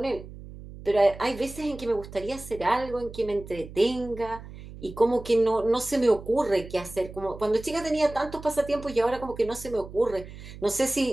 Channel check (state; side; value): noise; right; hum, 14 dB below the sound